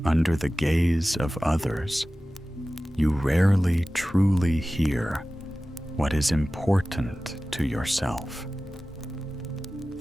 under the gaze of others, you rarely truly hear what is important to yourself.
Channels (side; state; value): both; normal; correlation 0.96